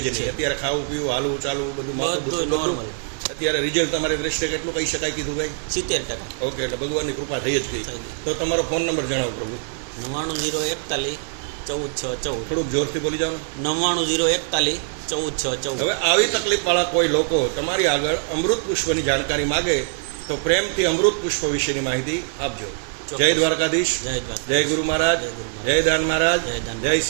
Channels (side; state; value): left; silent; digital silence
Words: જ નહીં. અત્યારે ખાવું પીવું, હાલવું ચાલવું બધું માથું દુખવું બધું. નોર્મલ. અત્યારે રિઝલ્ટ તમારી દ્રષ્ટિએ કેટલું કહી શકાય કીધું ભાઈ? 70%. ઓકે, એટલે ભગવાનની કૃપા થઈ જ ગઈ. થઈ ગઈ. તો તમારો ફોન નંબર જણાવો પ્રભુ. 99-041-14-6-14. થોડુંક જોરથી બોલી જાઓ ને. 99-041-14-6-14. હવે આવી તકલીફ વાળા કોઈ લોકો તમારી આગળ અમૃત પુષ્પની જાણકારી માગે તો પ્રેમથી અમૃત પુષ્પ વિશેની માહિતી આપજો. જય દ્વારકાધીશ. જય દ્વારકા. જય ગુરુ મહારાજ. જય ગુરુ મહારાજ. જય દાન મહારાજ. જય દાન જય